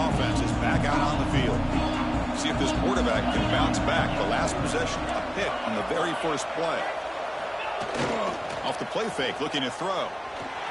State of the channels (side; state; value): both; identical; correlation 1.00